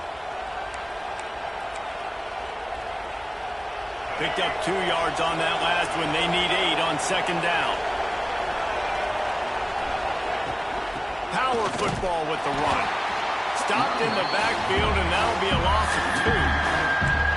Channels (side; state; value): both; identical; correlation 1.00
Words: Picked up 2 yards on that last one. They need 8 on second down. Power football with the run. Stopped in the backfield, and that'll be a loss of 2.